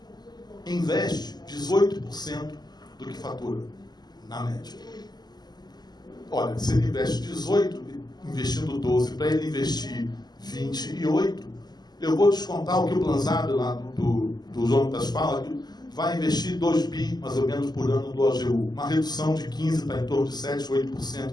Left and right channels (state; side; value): late; right; 0.20 ms